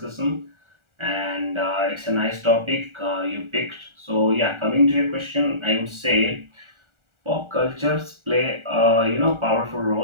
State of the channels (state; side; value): late; left; 1.4 ms